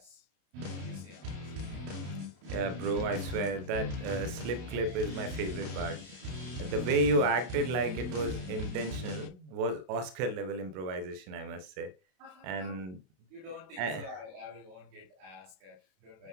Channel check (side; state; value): left; late; 32 ms